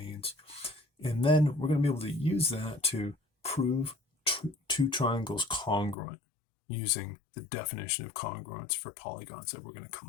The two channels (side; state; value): right; drops out; at 6.0 s